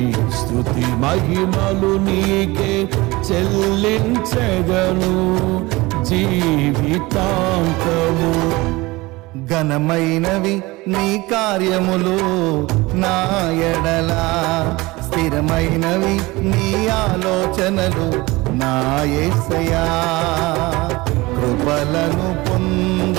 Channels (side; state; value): left; quieter; 21.7 dB